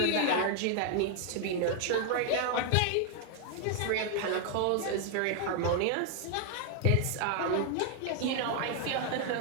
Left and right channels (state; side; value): different; both; correlation 0.00